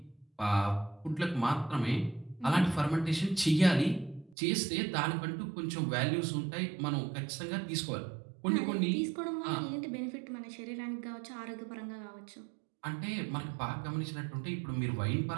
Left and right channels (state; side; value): drops out; left; at 4.4 s